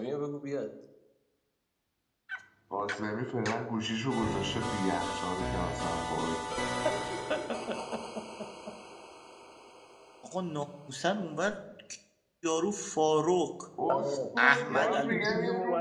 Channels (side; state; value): both; identical; correlation 1.00